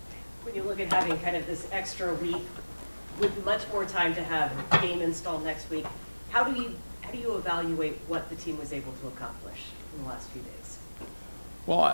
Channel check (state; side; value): inverted; both; correlation -1.00